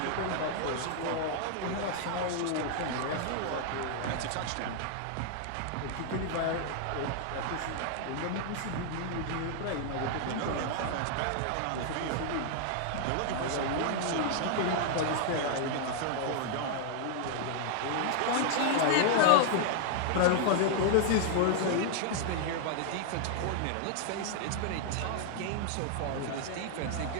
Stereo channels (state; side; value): different; both; correlation -0.01